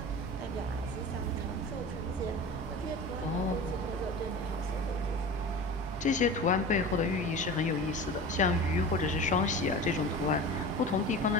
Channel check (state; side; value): normal; both; correlation 0.34